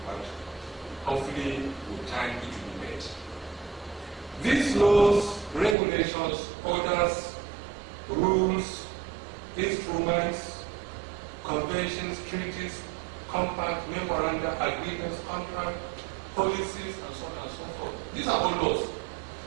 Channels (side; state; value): left; drops out; at 5.8 s